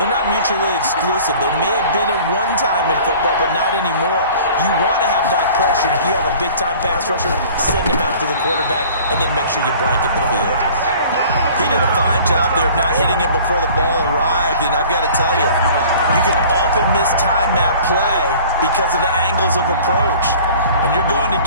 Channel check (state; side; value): inverted; both; correlation -0.47